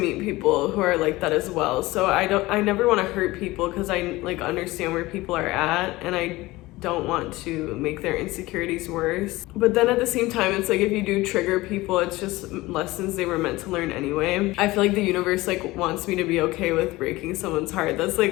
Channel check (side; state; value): right; quieter; 19.7 dB